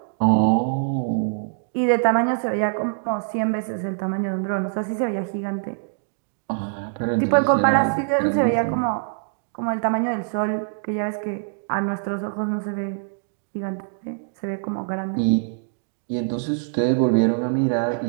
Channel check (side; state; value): left; silent; digital silence